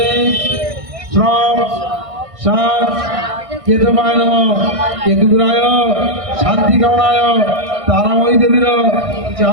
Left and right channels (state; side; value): late; left; 1.6 ms